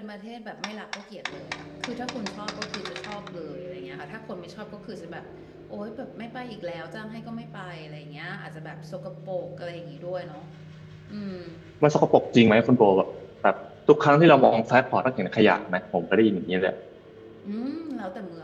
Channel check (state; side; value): identical; both; correlation 1.00